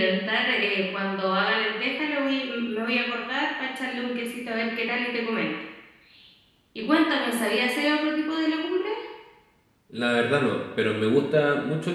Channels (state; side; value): identical; both; correlation 1.00